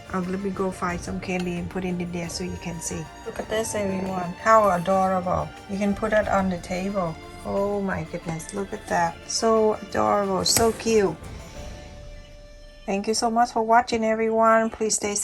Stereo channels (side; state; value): both; identical; correlation 1.00